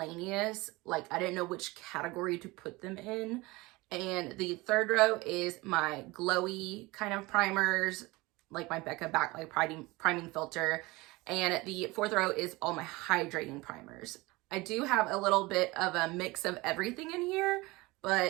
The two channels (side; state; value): left; quieter; 22.2 dB